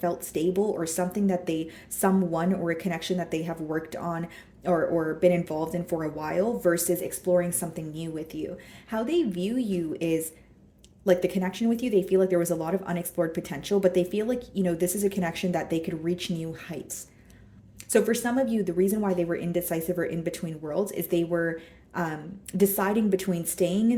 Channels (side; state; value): both; identical; correlation 1.00